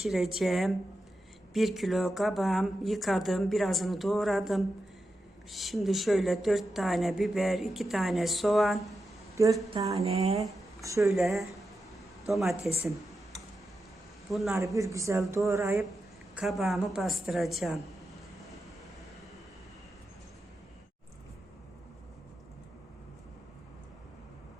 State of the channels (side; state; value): both; normal; correlation 0.89